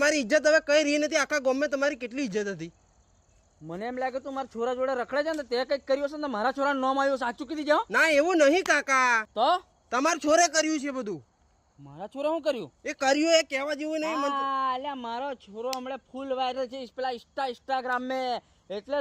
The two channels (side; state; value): both; identical; correlation 1.00